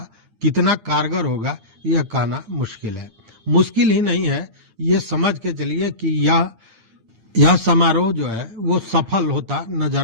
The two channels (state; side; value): late; left; 8.8 ms